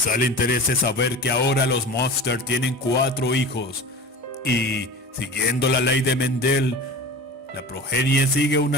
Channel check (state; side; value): normal; both; correlation 0.34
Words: le interese saber que ahora los Monster tienen 4 hijos y, siguiendo la ley de Mendel, la progenie sigue